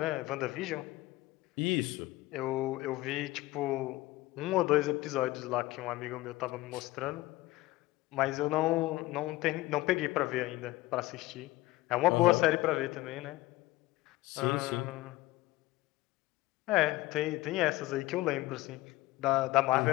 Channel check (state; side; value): quieter; right; 18.8 dB